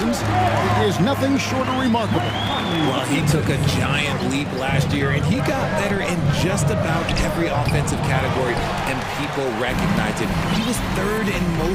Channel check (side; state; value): both; identical; correlation 1.00